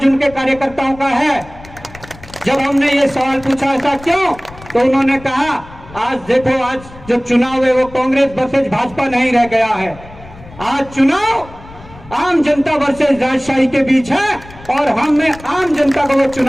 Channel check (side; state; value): left; noise; rumble, 19 dB below the sound